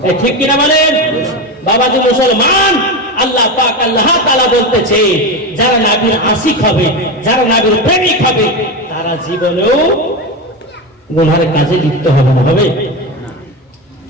ঠিক কিনা বলেন? বাবাজি মুসলমান, আল্লাহ পাক আল্লাহ তাআলা বলতেছে যারা নবীর আশিক হবে, যারা নবীর প্রেমিক হবে, তারা জীবনেও গুনার কাজে লিপ্ত হবে না। হবে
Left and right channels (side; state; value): both; normal; correlation 0.18